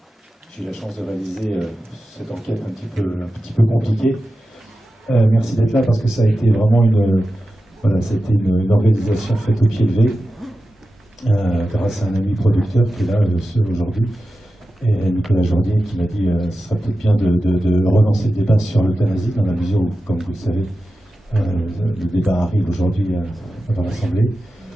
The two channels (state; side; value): normal; both; correlation 0.93